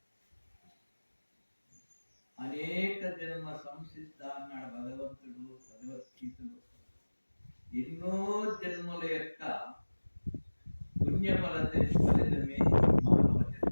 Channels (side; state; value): both; inverted; correlation -1.00